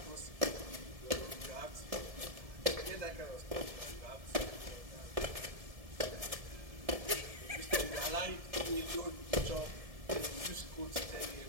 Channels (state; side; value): late; left; 1.7 ms